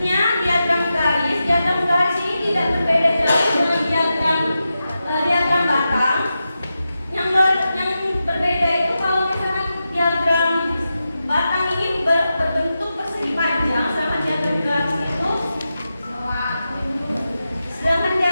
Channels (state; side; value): inverted; both; correlation -0.90